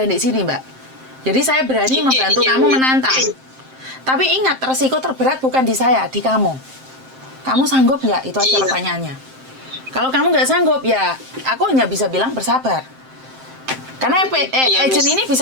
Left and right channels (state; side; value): late; left; 7.6 ms